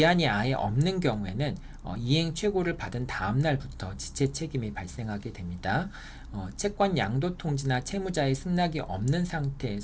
아예 없는 경우에는 이행 최고를 받은 다음 날부터 지체 책임이 발생하게 됩니다. 채권 양도 통지나 채무자의 승낙이 없는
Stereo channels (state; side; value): identical; both; correlation 1.00